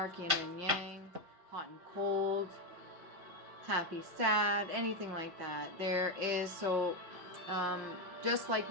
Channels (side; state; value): left; late; 5.6 ms